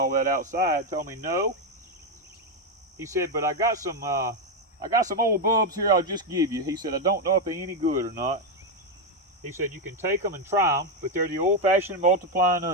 that outside told me no. He said, but I got some old bulbs here I'll just give you. He said, I don't know if they're any good or not. He said, you can take them and try them, but they're the old-fashioned multiplying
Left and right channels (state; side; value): normal; both; correlation 0.05